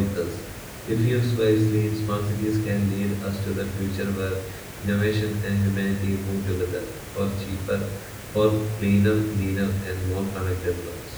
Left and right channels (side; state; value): both; identical; correlation 1.00